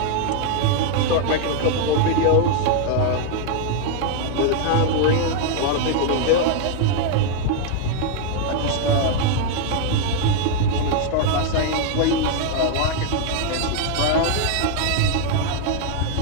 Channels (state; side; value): different; both; correlation 0.00